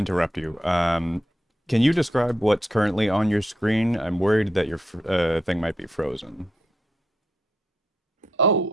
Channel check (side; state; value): both; normal; correlation 0.82